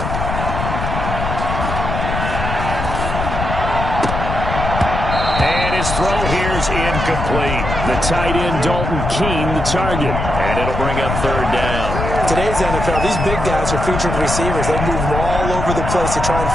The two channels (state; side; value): noise; left; rumble, 3 dB below the sound